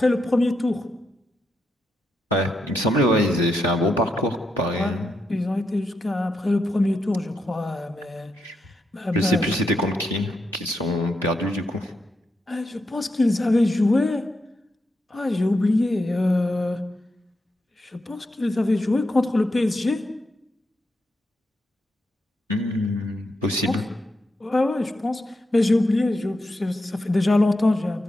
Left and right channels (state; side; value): normal; both; correlation 0.84